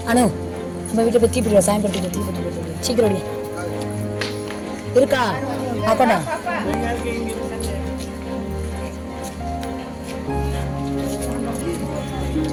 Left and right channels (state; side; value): identical; both; correlation 1.00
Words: அனு நம்ம வீட்டை போய் தீப்பிடிவா சாயம்படுத்தி தீப்பட்டு சீக்கிரம் இருக்கா அப்பண்ணா